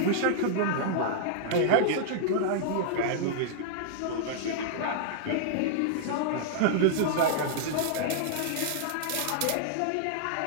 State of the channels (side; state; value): both; different; correlation -0.01